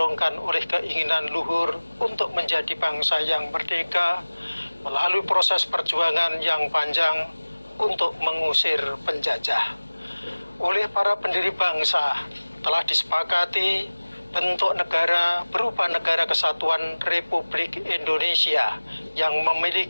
oleh keinginan luhur untuk menjadi bangsa yang merdeka melalui proses perjuangan yang panjang untuk mengusir penjajah. Oleh para pendiri bangsa telah disepakati bentuk negara berupa Negara Kesatuan Republik Indonesia yang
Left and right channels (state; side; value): inverted; both; correlation -1.00